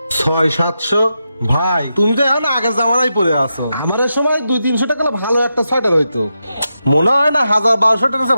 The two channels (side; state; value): both; inverted; correlation -0.87